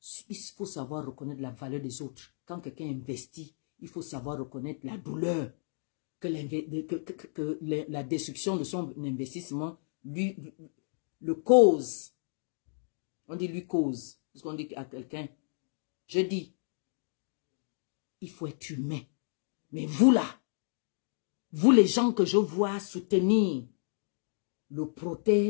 Il faut savoir reconnaître la valeur des autres. Quand quelqu'un investit, il faut savoir reconnaître la douleur que la destruction de son investissement lui le cause. On dit lui cause. Parce qu'on dit à quelqu'un, je dis, il faut être humain. Mais vous là, vous les gens que je vois soutenir le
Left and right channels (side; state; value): right; silent; digital silence